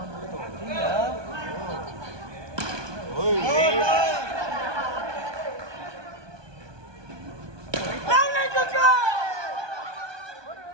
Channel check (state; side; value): late; left; 1.2 ms